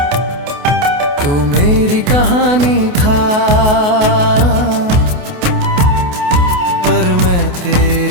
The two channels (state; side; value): late; left; 28 ms